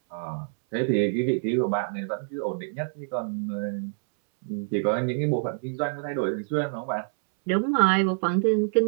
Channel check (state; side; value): silent; left; 61 dB below the other